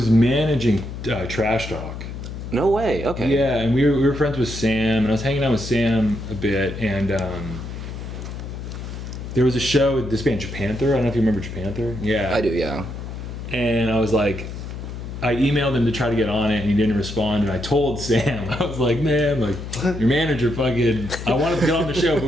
managing Trash Talk. No way. Okay. Yeah, and we were friends with Sam, and I was hanging out with Sam a bit, and there was a show with this band Japanther. I don't know if you remember Japanther. Yeah. I do, yeah. And I was like, I emailed him to try to get on it, and he didn't respond. And I told Sam, I was like, man, like your manager fucking, I wanted to get on the show, but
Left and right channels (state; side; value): noise; left; hum, 8 dB below the sound